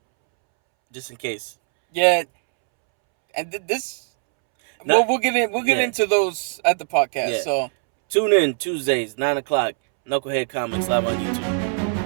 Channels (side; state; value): left; silent; 65 dB below the other